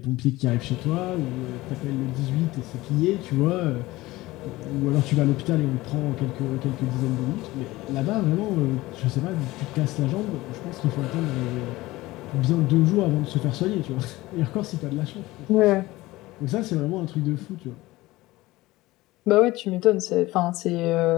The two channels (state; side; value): quieter; right; 18.9 dB